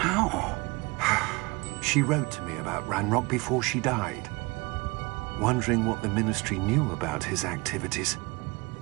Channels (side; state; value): left; quieter; 25.8 dB